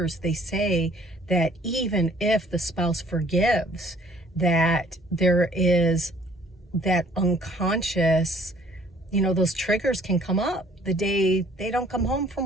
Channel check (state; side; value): normal; both; correlation 0.57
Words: they say that even if the spouse forgives, that there is that unconscious, you know, those triggers can come up the day they don't come home from